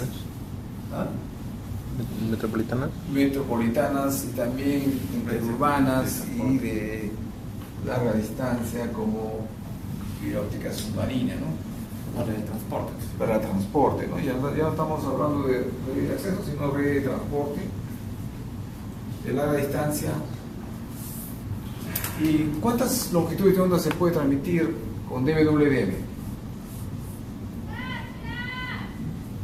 ¿Ah? Metropolitanas. Metropolitanas y también interurbanas y de larga distancia como fibra óptica submarina, ¿no? Para el transporte. Para transporte, ¿no? Ya no estamos hablando de red de acceso, sino red de transporte de larga distancia. ¿Y cuántas longitudes de onda se puede transmitir con DWDM?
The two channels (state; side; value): identical; both; correlation 1.00